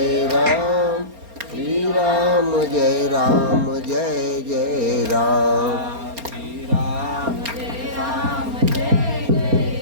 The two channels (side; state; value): left; late; 4.3 ms